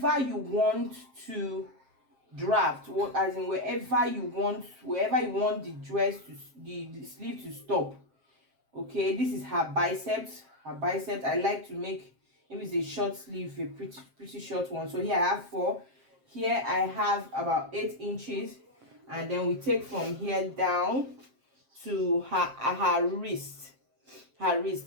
you want to draft, as in wherever you want the dress to, the sleeve to stop. Okay, this is her biceps. I like to make, if it's a short sleeve, a pretty short one. So here I have 4. Here I have about 8 inches, and then we take from here down to her wrist. Here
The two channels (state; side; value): late; left; 7.5 ms